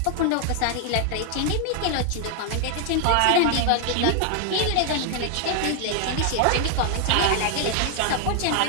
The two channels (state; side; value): different; both; correlation 0.00